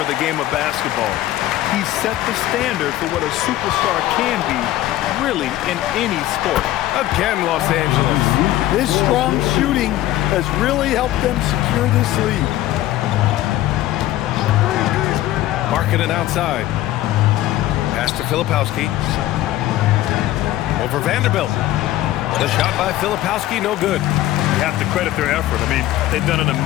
the game of basketball. He set the standard for what a superstar can be, really, in any sport. Again, Los Angeles. His strong shooting has really helped them secure this lead. Markkanen outside. Pass to Filipowski. Over Vanderbilt. The shot by Filipowski, no good. You have to credit their effort. I mean, they've done an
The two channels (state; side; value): quieter; right; 14.6 dB